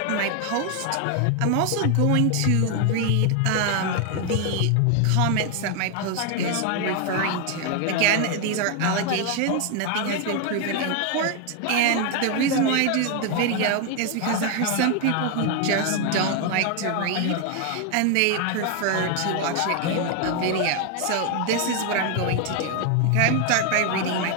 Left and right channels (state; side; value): different; both; correlation 0.01